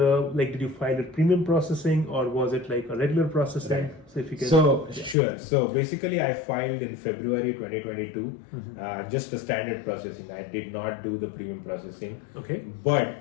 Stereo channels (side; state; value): right; drops out; at 5.2 s